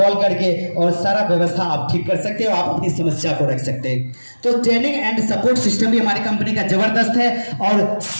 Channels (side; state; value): both; inverted; correlation -1.00